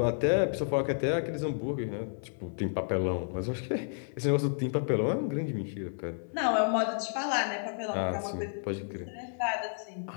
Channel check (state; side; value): silent; right; 57 dB below the other